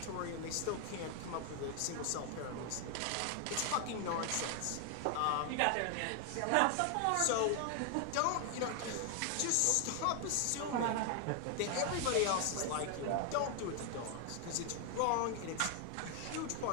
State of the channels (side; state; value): both; different; correlation 0.00